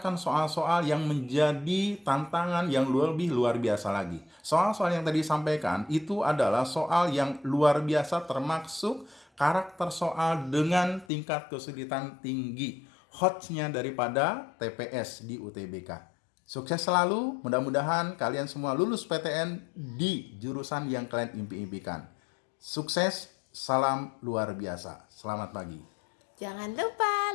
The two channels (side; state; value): right; drops out; at 11.1 s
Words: soal-soal yang menjadi tantangan yang lebih luar biasa lagi. Soal-soal yang tadi disampaikan itu adalah soal yang luar biasa, termasuk karakter soal dengan tingkat kesulitan tinggi. Hotnya daripada TPS di UTBK. Sukses selalu, mudah-mudahan kalian semua lulus PTN di jurusan yang kalian impi-impikan. Sukses, salam luar biasa. Selamat pagi. Jangan lupa